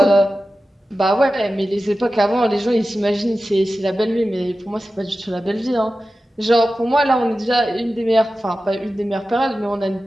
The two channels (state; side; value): normal; both; correlation 0.94